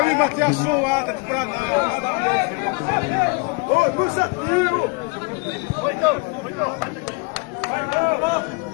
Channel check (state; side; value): quieter; right; 30.9 dB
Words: vi bater a suada pra